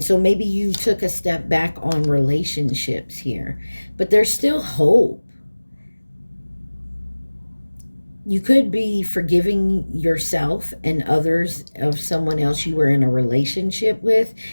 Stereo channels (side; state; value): both; inverted; correlation -1.00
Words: so maybe you took a step back on relationships here, but there's still hope. You could be forgiving yourself and others of someone else you were in a relationship with,